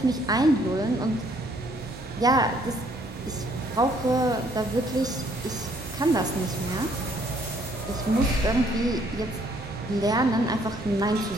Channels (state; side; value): normal; both; correlation 0.65